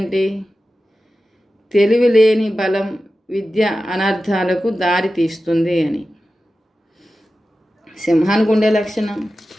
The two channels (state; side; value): normal; both; correlation 0.93